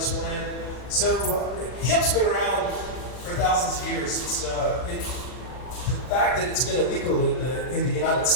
plan? So hemp's been around for thousands of years. It's the fact that it's been illegal in the United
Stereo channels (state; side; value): late; right; 40 ms